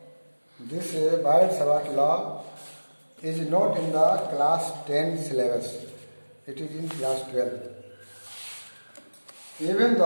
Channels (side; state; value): both; inverted; correlation -1.00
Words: this Biot-Savart law is not in the class 10 syllabus, it is in class 12. Even